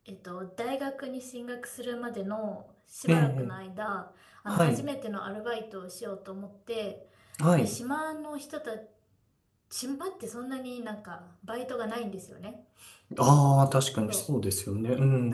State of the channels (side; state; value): both; identical; correlation 1.00